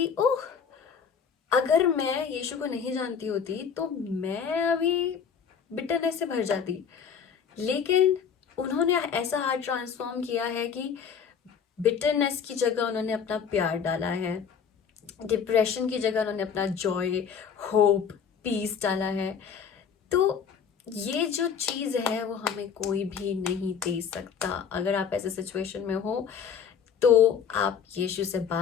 ओह, अगर मैं यीशु को नहीं जानती होती तो मैं अभी बिटरनेस से भर जाती। लेकिन उन्होंने ऐसा हार्ट ट्रांसफॉर्म किया है कि बिटरनेस की जगह उन्होंने अपना प्यार डाला है, डिप्रेशन की जगह उन्होंने अपना जॉय, होप, पीस डाला है। तो ये जो चीज़ है वो हमें कोई भी नहीं दे सकता। अगर आप ऐसे सिचुएशन में हो तो आप यीशु से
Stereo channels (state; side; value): quieter; right; 7.1 dB